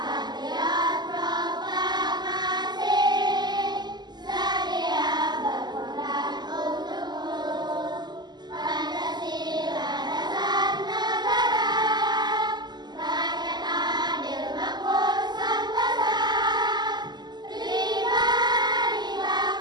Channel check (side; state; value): left; late; 0.21 ms